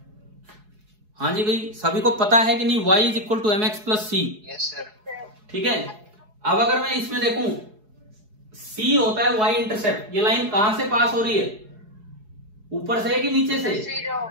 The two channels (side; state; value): left; late; 4.7 ms